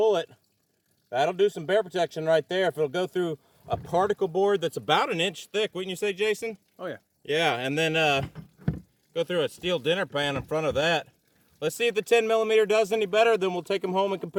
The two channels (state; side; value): identical; both; correlation 1.00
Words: That'll do some bear protection right there if it'll go through a particle board that's about 1 inch thick, wouldn't you say, Jason? Oh, yeah. Yeah, and then go through a steel dinner pan in front of that. Let's see if the 10mm does any better, then we'll take them home and